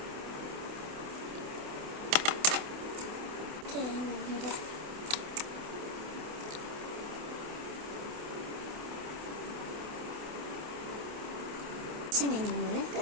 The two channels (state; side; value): late; left; 28 ms